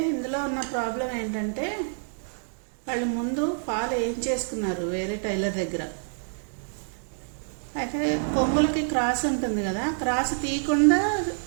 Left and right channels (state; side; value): silent; left; digital silence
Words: ఇందులో ఉన్న ప్రాబ్లం ఏంటంటే వాళ్ళు ముందు ఫాల్ ఏం చేసుకున్నారు వేరే టైలర్ దగ్గర. అయితే కొంగులకి క్రాస్ ఉంటుంది కదా, క్రాస్ తీయకుండా